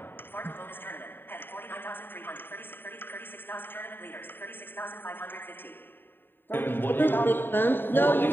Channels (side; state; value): right; late; 0.096 ms